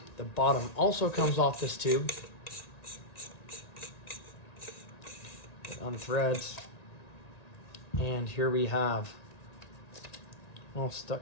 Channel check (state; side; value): late; right; 1.9 ms